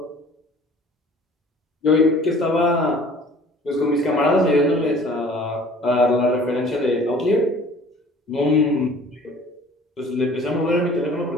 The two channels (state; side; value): normal; both; correlation 0.50